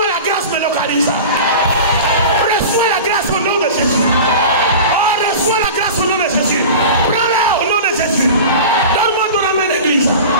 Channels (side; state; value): both; inverted; correlation -0.34